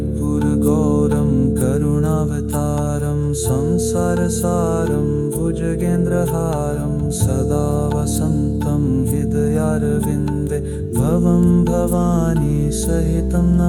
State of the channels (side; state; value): both; identical; correlation 1.00